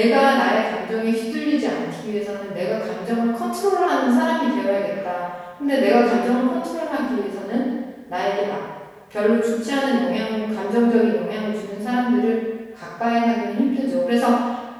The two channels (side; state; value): both; identical; correlation 1.00